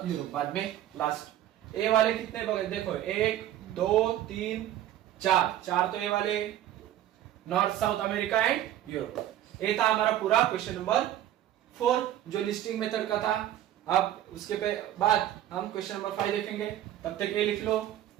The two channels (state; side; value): quieter; left; 12.4 dB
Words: यूरोप बाद में लास्ट। ए वाले कितने बगे देखो, 1 2 3 4 तो ए वाले, north south America and Europe. ये था हमारा पूरा क्वेश्चन नंबर 4 जो लिस्टिंग मेथड का था। अब उसके बाद हम क्वेश्चन नंबर 5 देखेंगे, तब तक ये लिख लो।